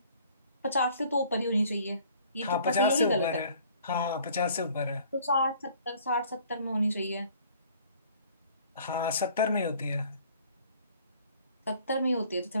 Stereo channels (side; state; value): both; inverted; correlation -0.55